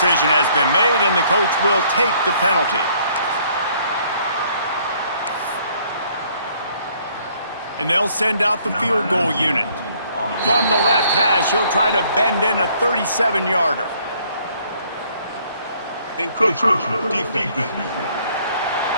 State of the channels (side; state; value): both; inverted; correlation -0.63